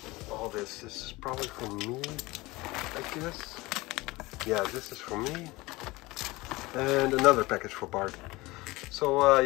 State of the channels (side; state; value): right; quieter; 21.4 dB